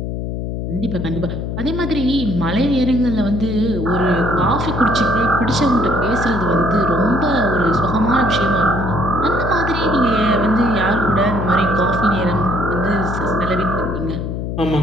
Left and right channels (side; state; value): left; noise; hum, 4 dB below the sound